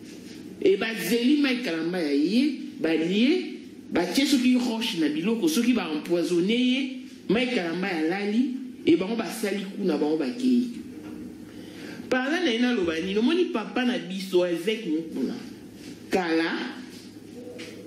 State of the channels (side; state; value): both; identical; correlation 1.00